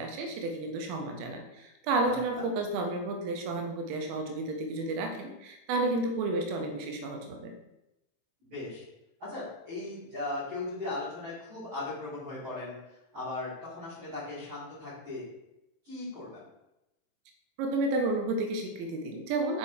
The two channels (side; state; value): left; late; 18 ms